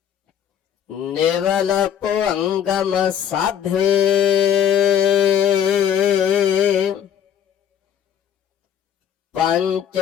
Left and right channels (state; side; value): quieter; right; 9.0 dB